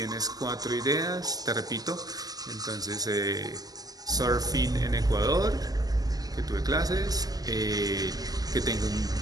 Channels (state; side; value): late; left; 0.18 ms